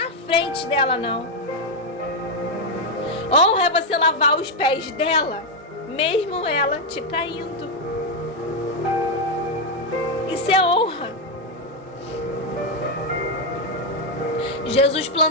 frente dela, não. Honra é você lavar os pés dela, mesmo ela te traindo. Isso é honra. Jesus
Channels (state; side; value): normal; both; correlation 0.03